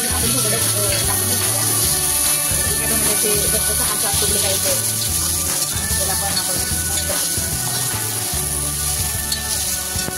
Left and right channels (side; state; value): both; identical; correlation 1.00